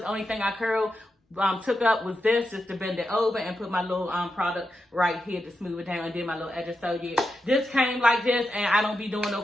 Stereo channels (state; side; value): normal; both; correlation 0.88